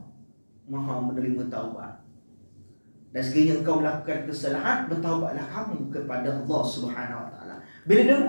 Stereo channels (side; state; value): both; inverted; correlation -1.00